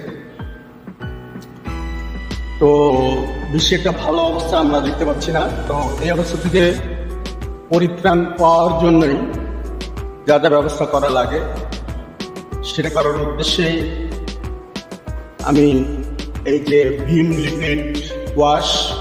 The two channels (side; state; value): both; identical; correlation 1.00